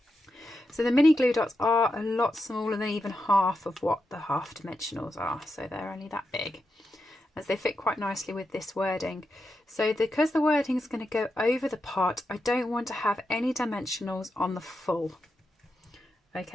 So the mini glue dots are a lot smaller than even half of what the half dimensionals are. So they're only that big, as they fit quite nicely with this wording. So because the wording is going to go over the pot, I don't want to have any dimensionals on the full.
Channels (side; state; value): both; normal; correlation 0.87